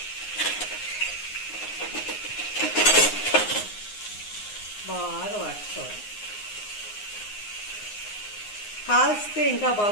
బాగా వాడుకోవాలి. కాల్స్తే ఇంకా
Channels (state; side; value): late; right; 9.6 ms